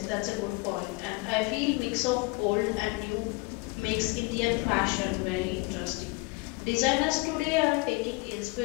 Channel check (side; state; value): right; quieter; 26.1 dB